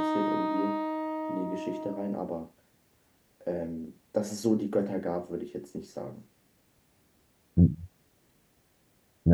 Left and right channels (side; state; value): both; identical; correlation 1.00